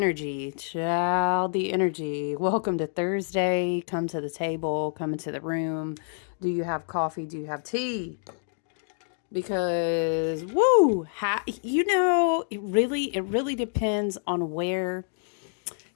child, the energy. Welcome to Thursday. Come to the table, come into the room. Do you have coffee? Do you have tea? Because woo, it really depends on where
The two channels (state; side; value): silent; right; digital silence